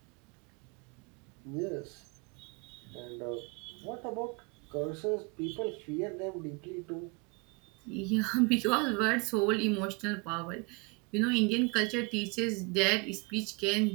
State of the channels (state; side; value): quieter; left; 29.8 dB